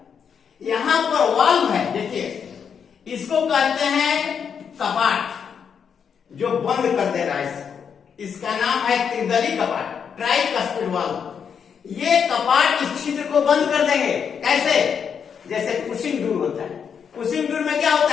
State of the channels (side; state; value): right; quieter; 7.1 dB